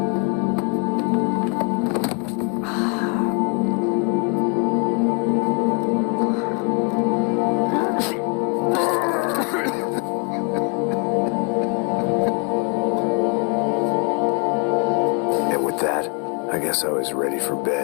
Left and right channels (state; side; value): quieter; right; 32.8 dB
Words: I guess I was ready for